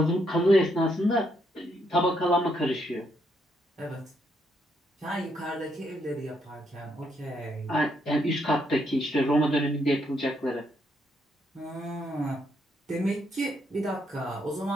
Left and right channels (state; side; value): normal; both; correlation 0.75